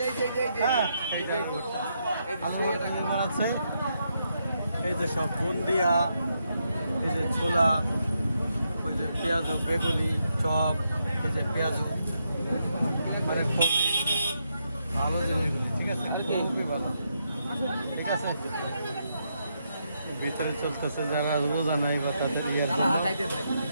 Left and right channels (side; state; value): both; inverted; correlation -0.80